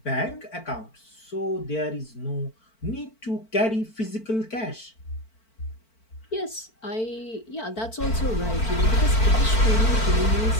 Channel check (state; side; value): late; right; 4.5 ms